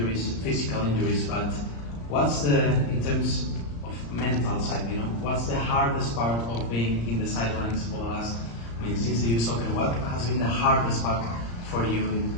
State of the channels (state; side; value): late; right; 35 ms